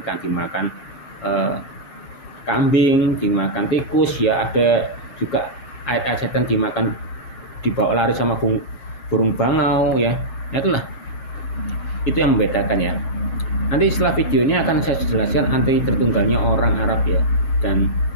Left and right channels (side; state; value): right; late; 6.5 ms